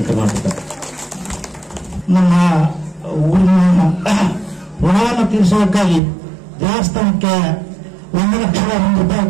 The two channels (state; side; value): drops out; left; at 6.0 s